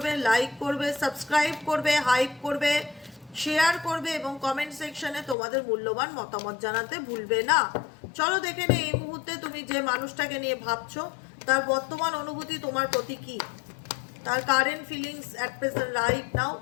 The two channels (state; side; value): drops out; right; at 5.4 s